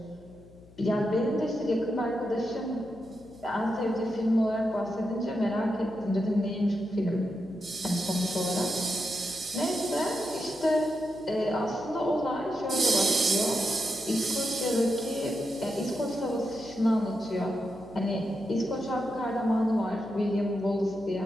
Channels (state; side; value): noise; left; hum, 23 dB below the sound